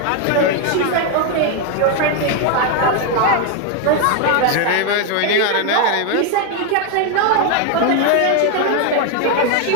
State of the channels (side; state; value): both; different; correlation 0.01